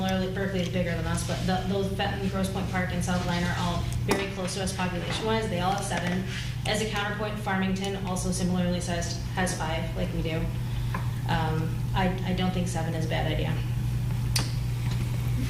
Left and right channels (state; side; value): identical; both; correlation 1.00